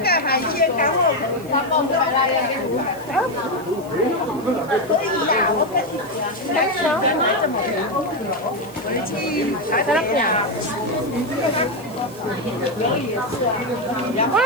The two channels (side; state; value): right; noise; hiss, 22 dB below the sound